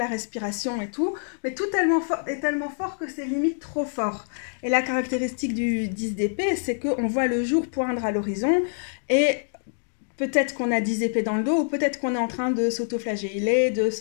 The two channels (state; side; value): silent; right; digital silence